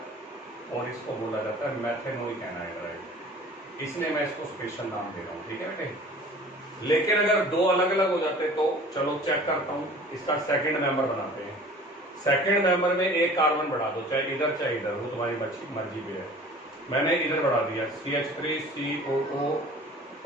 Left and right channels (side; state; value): both; normal; correlation 0.45